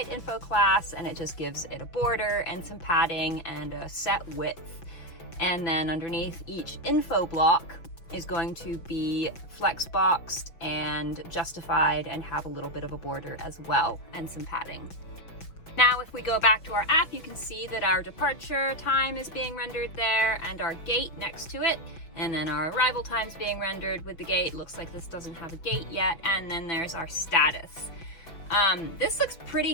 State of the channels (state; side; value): late; right; 6.0 ms